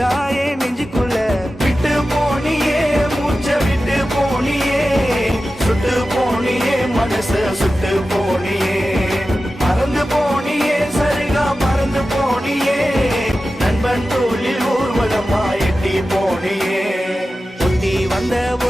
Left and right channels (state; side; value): normal; both; correlation 0.94